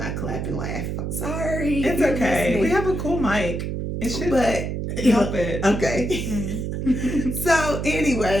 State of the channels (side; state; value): right; noise; hum, 3 dB below the sound